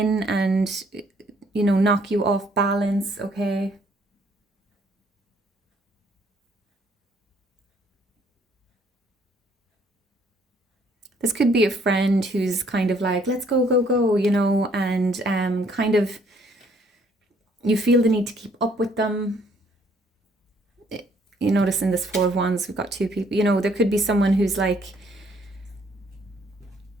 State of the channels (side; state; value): both; normal; correlation 0.64